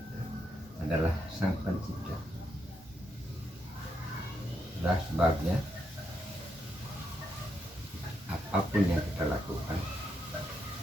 adalah Sang Pencipta. Itulah sebabnya apapun yang kita lakukan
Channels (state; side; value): normal; both; correlation 0.80